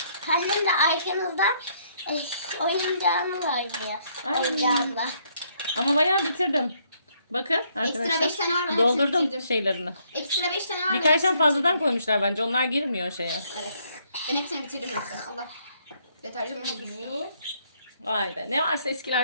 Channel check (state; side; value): inverted; both; correlation -0.69